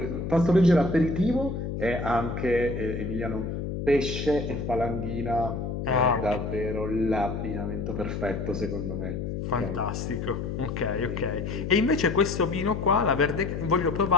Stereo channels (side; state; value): left; noise; hum, 4 dB below the sound